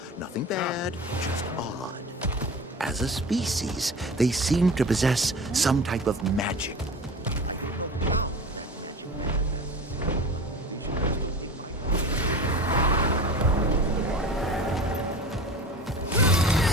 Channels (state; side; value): normal; both; correlation 0.34